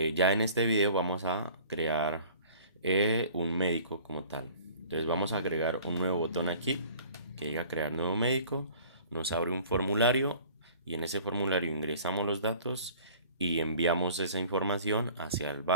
en este video vamos a crear un médico como tal. Entonces vamos a agregar un nuevo botón aquí que diga crear nuevo médico. Nos abre un formulario y en ese formulario ingresamos los datos y enviamos esa información hacia el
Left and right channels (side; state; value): both; inverted; correlation -0.49